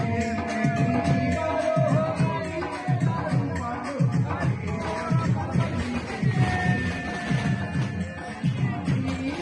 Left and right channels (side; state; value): both; identical; correlation 1.00